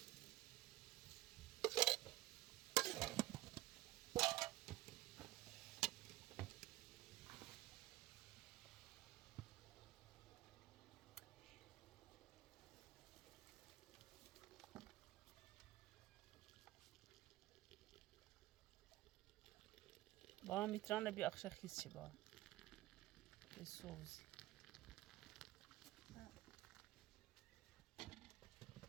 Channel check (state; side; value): quieter; left; 17.5 dB